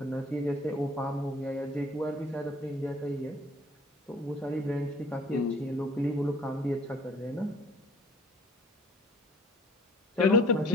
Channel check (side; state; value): both; normal; correlation 0.54